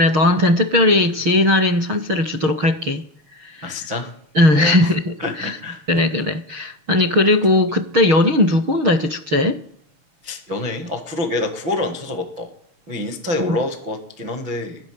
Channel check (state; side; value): late; left; 6.5 ms